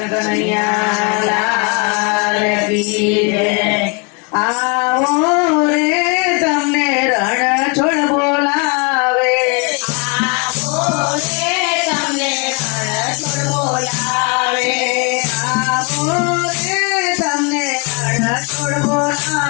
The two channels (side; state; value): right; quieter; 32.6 dB